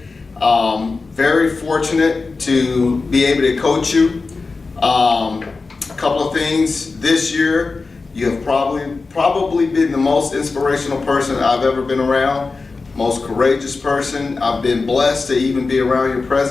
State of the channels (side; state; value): right; quieter; 4.0 dB